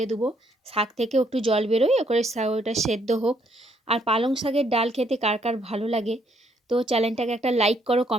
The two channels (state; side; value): normal; both; correlation 0.70